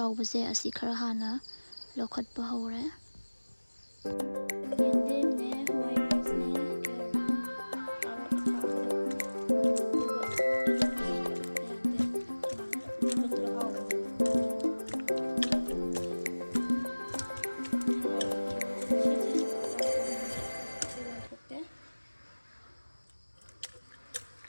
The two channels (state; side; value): inverted; both; correlation -1.00